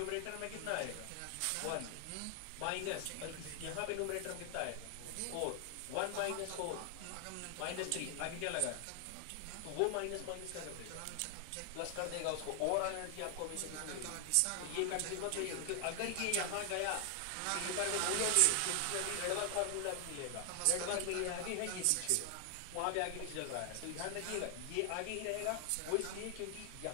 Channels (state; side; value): different; both; correlation 0.00